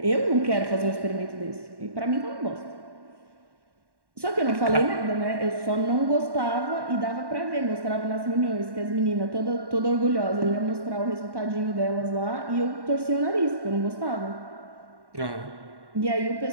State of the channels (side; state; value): left; late; 1.1 ms